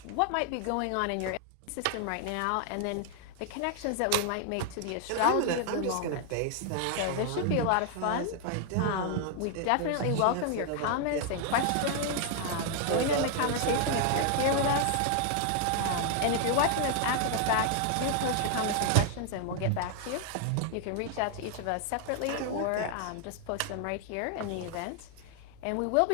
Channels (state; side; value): different; both; correlation 0.00